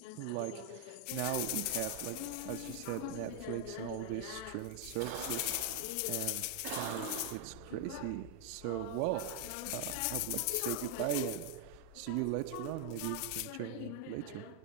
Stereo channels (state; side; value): different; both; correlation 0.00